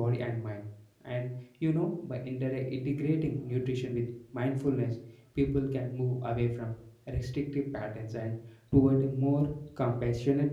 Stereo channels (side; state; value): both; identical; correlation 1.00